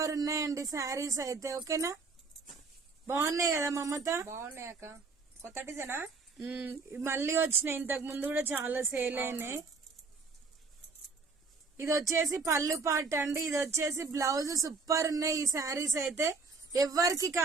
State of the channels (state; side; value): quieter; left; 4.3 dB